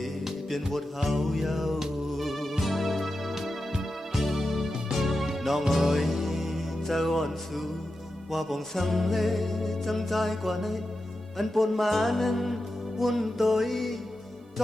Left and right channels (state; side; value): normal; both; correlation 0.90